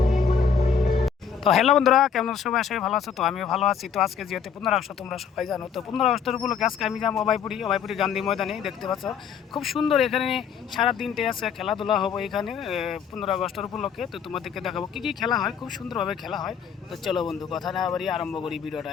হ্যালো বন্ধুরা, কেমন সবাই? আসলে ভালো আছো? তো আমিও ভালো আছি। তো আজকে যেহেতু 15 আগস্ট তোমরা সবাই জানো, তো 15 আগস্টের উপলক্ষে আজকে আমি যাবো অভয়পুরি গান্ধী ময়দানে। দেখতে পাচ্ছ খুব সুন্দর, এখানে সারা দিনটে আছে খেলাধুলা হবে এখানে 15 আগস্টের উপলক্ষে। তো তোমাদেরকে দেখাবো কী কী খেলা হয়, খুব সুন্দরভাবে খেলা হয়। তো চলো বন্ধু, কথা না বাড়িয়ে আরম্ভ করি ভিডিওটা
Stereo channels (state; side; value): quieter; right; 6.9 dB